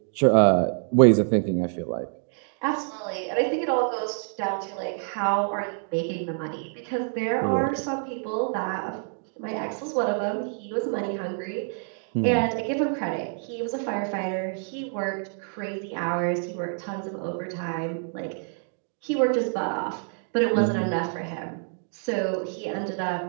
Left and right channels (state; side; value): silent; left; 60 dB below the other